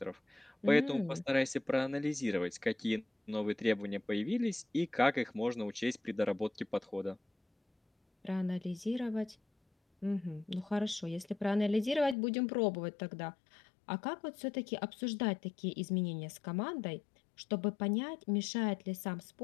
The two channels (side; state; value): right; drops out; at 12.2 s